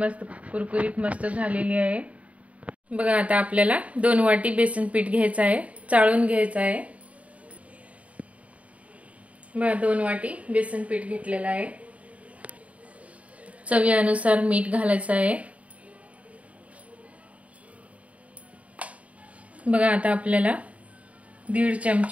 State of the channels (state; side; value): late; left; 0.067 ms